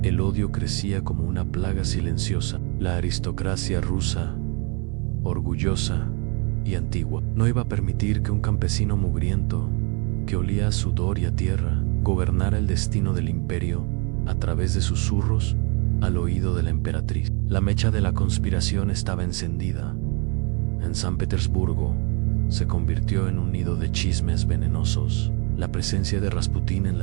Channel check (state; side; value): quieter; left; 33.1 dB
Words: el odio crecía como una plaga silenciosa. La aristocracia rusa, orgullosa y antigua, no iba a permitir que un campesino mugriento, que olía a sudor y a tierra, gobernara el destino del imperio a través de susurros al oído de la emperatriz. La mecha de la conspiración estaba encendida. En San Petersburgo se convirtió en un nido de chismes venenosos. La presencia de Rasputín en